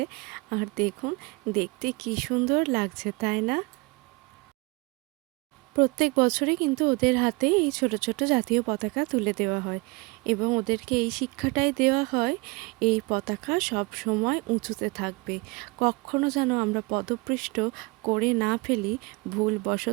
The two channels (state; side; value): quieter; left; 25.9 dB